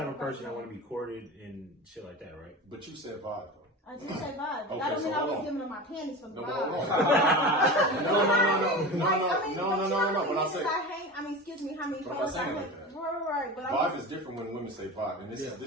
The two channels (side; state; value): both; normal; correlation 0.29